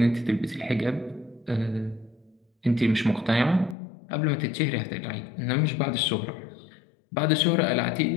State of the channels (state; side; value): drops out; right; at 3.8 s